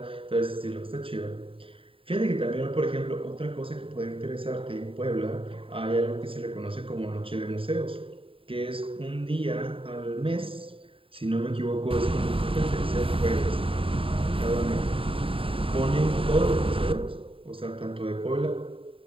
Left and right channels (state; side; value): late; left; 0.26 ms